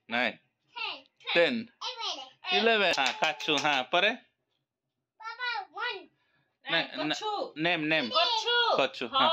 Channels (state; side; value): identical; both; correlation 1.00